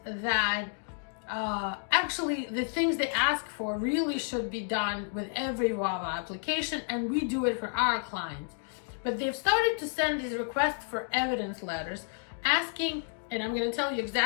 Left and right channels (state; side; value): silent; right; 57 dB below the other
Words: that actually the things they ask for really should be done with every VAWA application, and we do it for our clients. But they've started to send these requests for evidence letters asking, and I'm going to tell you